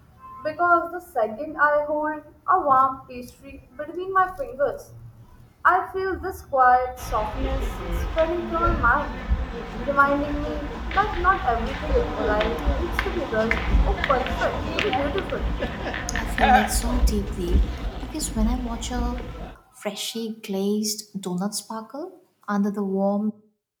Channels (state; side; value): identical; both; correlation 1.00